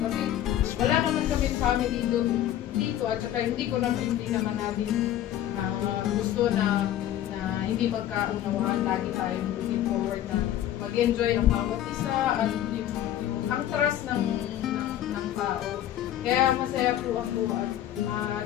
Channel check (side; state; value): right; quieter; 12.0 dB